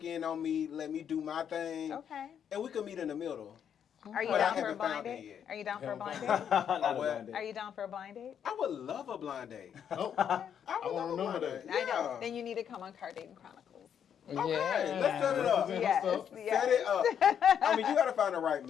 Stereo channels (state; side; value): quieter; right; 8.5 dB